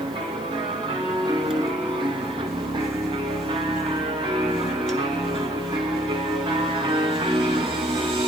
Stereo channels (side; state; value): left; noise; hiss, 23 dB below the sound